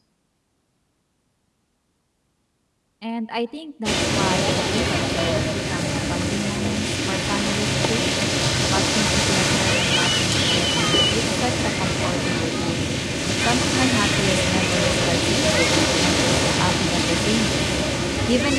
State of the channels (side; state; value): both; identical; correlation 1.00